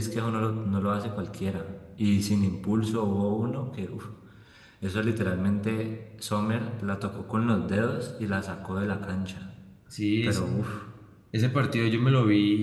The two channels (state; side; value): identical; both; correlation 1.00